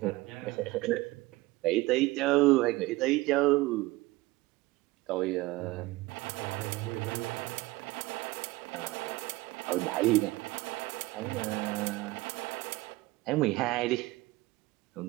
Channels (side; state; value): left; quieter; 20.4 dB